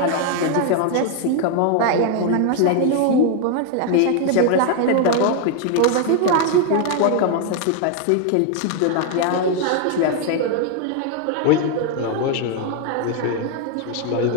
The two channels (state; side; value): different; both; correlation 0.01